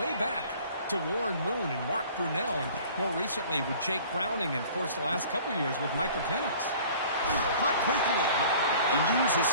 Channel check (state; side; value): inverted; both; correlation -0.49